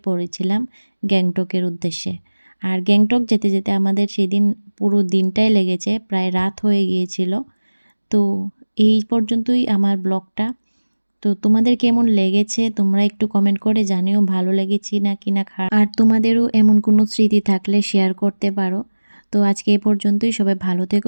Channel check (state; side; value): inverted; both; correlation -1.00